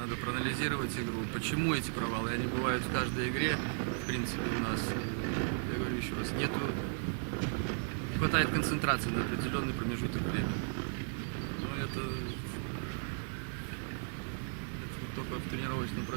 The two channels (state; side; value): silent; left; 54 dB below the other